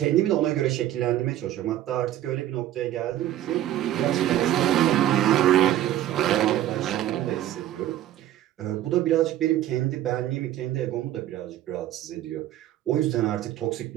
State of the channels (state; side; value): quieter; left; 12.9 dB